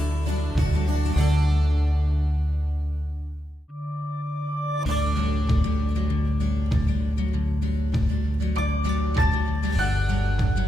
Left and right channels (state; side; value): normal; both; correlation 0.86